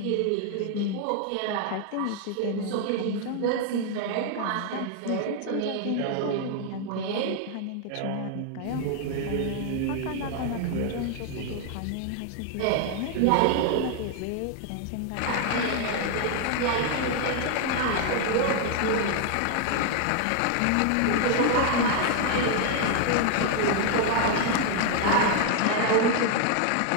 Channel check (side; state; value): both; different; correlation 0.00